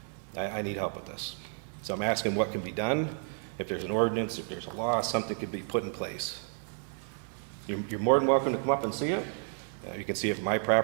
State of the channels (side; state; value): left; silent; 57 dB below the other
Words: I need help with this. So I'm asking what can be done. If there's an ordinance, if there's a law, something could be put in place. You're more than welcome to come up and see it. You can see it from my